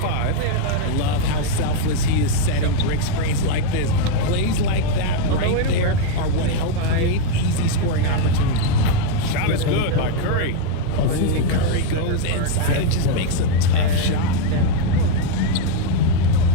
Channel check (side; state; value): both; different; correlation 0.01